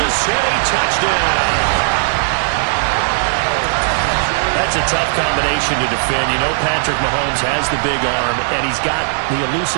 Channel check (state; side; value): silent; left; digital silence